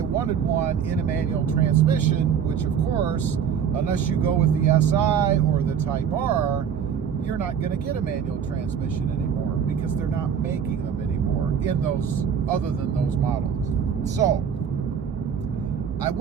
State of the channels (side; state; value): left; quieter; 7.7 dB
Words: wanted one in a manual transmission, which of course, unless you go with the SI or the Type R, you're not going to get a manual transmission anymore because they're not making them anymore in those, other than those models. So, I